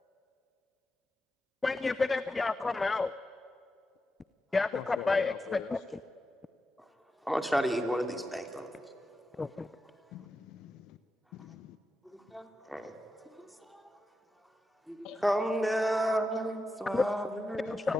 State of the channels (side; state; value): both; normal; correlation 0.89